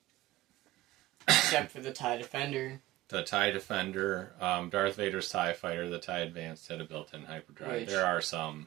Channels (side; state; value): left; quieter; 17.0 dB